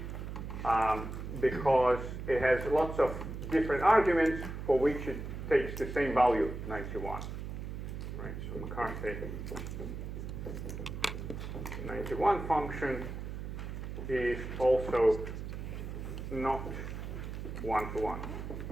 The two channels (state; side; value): noise; right; hum, 7 dB below the sound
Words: because it has lots of different arguments for which it takes the same value, 91. Right, so McCarthy 91 function is also not 1-to-1.